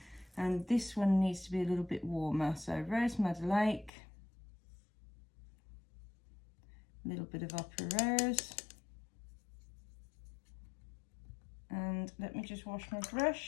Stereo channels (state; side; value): drops out; right; at 3.9 s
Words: And this one needs to be a little bit warmer. So Rose Madder Lake, a little bit of Opera Rose. And let me just wash my